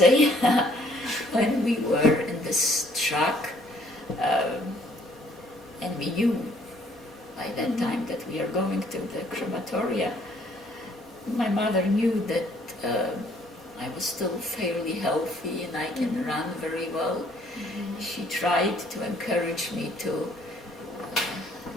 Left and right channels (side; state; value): both; normal; correlation 0.63